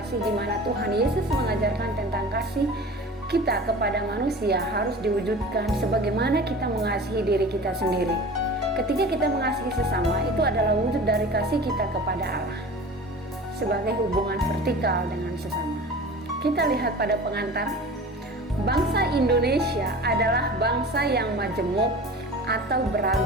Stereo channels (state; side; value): normal; both; correlation 0.38